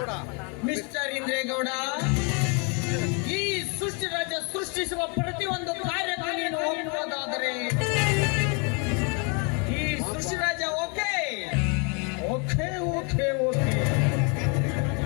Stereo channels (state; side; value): quieter; right; 35.2 dB